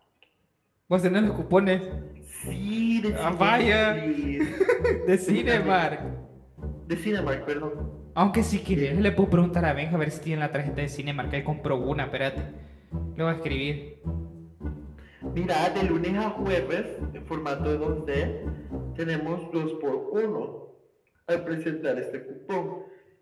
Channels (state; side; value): identical; both; correlation 1.00